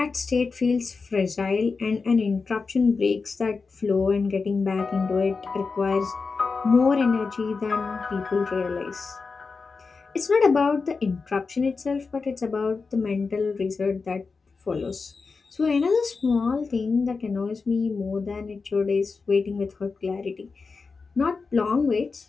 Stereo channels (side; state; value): right; quieter; 4.5 dB